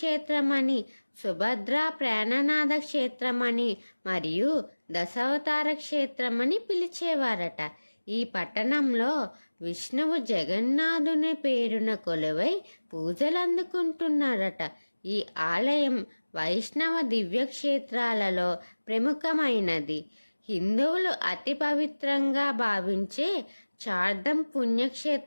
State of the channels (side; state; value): both; inverted; correlation -1.00